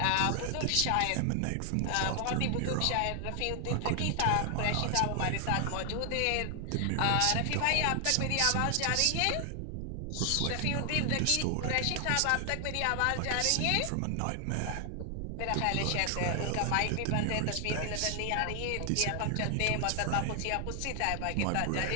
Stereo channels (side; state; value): both; different; correlation 0.00